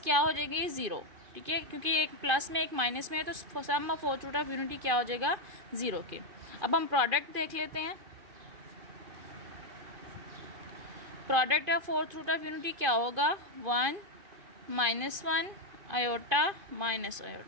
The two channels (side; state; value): left; late; 2.5 ms